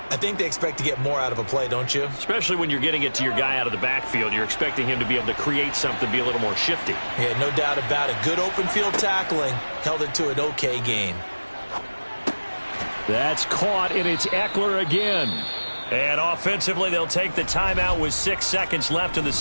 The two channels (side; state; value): both; inverted; correlation -1.00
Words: I think they expect to get more out of a play, don't you? Especially when you're getting it to your guy out of the backfield. You're expecting him to be able to create something, be a little more shifty. Yeah, no doubt about it. Good open field tackling held it to an okay gain. That's caught, and it's Eckler again. And offensively, they'll take the timeout with 6 seconds left in the